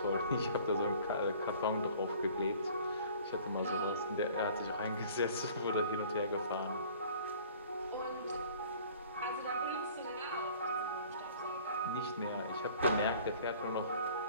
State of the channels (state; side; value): inverted; both; correlation -0.50